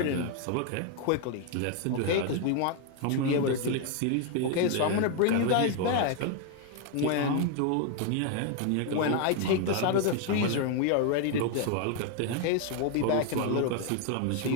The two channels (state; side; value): different; both; correlation 0.01